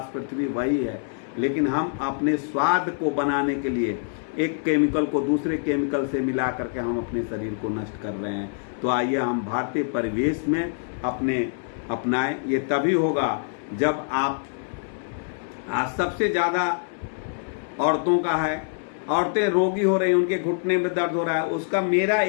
पृथ्वी वही है, लेकिन हम अपने स्वाद को बनाने के लिए एक केमिकल को दूसरे केमिकल से मिला करके हम अपने शरीर को नष्ट कर रहे हैं। तो आइए हम भारतीय परिवेश में अपनाएं। ये तभी होगा जब आप, आज सबसे ज्यादा औरतों का है, औरतें रोगी हो रही हैं, उनके घुटने में दर्द हो रहा है। उसका मेरा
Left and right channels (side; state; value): right; silent; digital silence